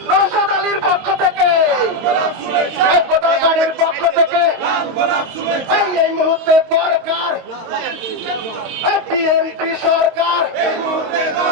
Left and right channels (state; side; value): late; left; 22 ms